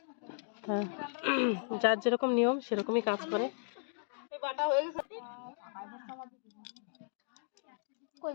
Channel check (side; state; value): right; silent; digital silence